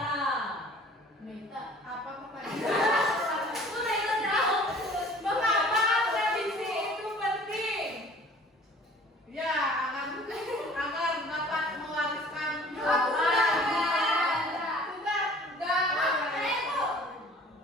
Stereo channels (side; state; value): both; normal; correlation 0.49